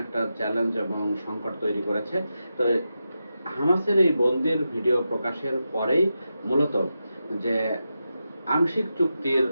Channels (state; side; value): inverted; both; correlation -0.89